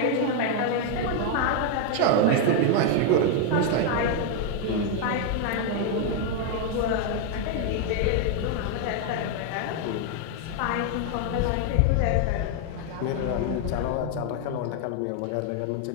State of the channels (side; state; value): both; different; correlation 0.00